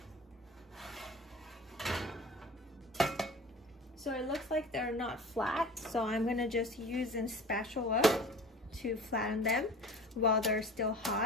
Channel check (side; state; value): both; normal; correlation 0.41